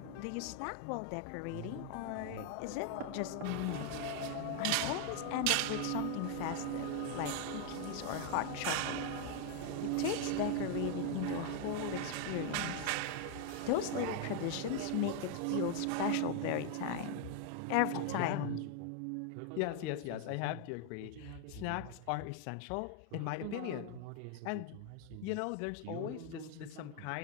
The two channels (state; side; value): different; both; correlation 0.00